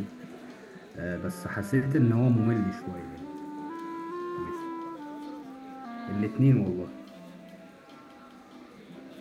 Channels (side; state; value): both; identical; correlation 1.00